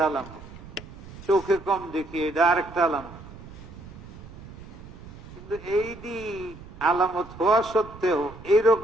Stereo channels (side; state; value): right; noise; rumble, 16 dB below the sound